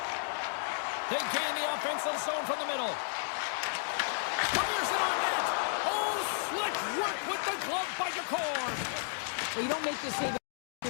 They gain the offensive zone from the middle. Fires it on net! Oh, slick work with the glove by Jakorn! Well, you don't make this save if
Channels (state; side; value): silent; right; digital silence